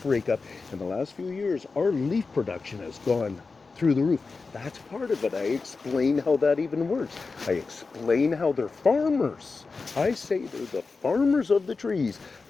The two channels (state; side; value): quieter; right; 4.3 dB